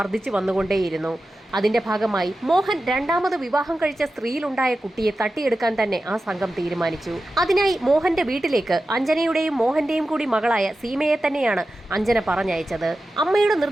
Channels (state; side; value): normal; both; correlation 0.93